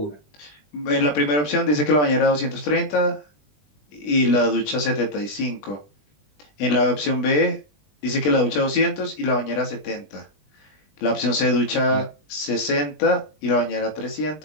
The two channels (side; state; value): right; late; 20 ms